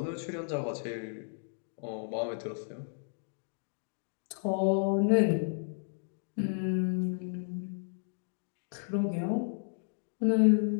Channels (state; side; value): silent; right; digital silence